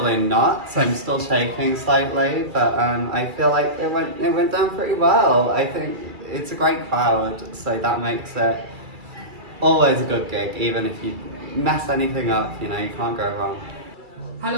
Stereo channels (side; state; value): left; late; 2.3 ms